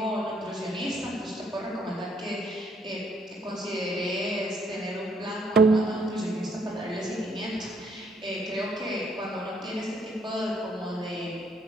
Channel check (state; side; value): normal; both; correlation 0.69